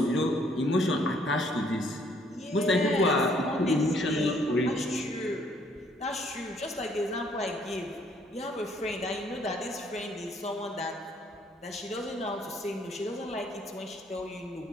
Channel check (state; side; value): normal; both; correlation 0.65